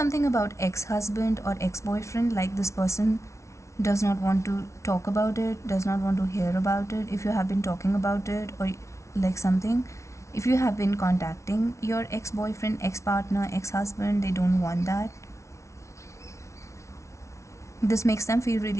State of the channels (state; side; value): late; right; 0.14 ms